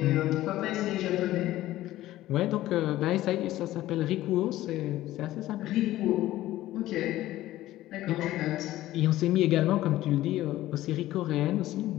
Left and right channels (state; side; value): quieter; right; 15.2 dB